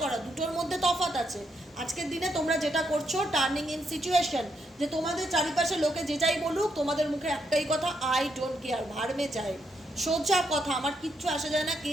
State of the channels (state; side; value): normal; both; correlation 0.78